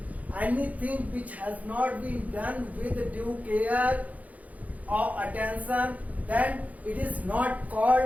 Anything which has not been done with due care or attention, then it is not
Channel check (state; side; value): late; left; 0.074 ms